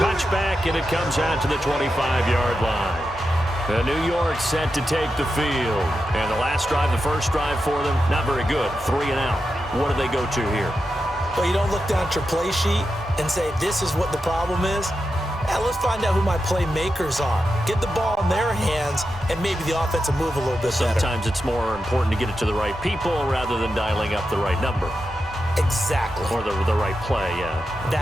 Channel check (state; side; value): normal; both; correlation 0.89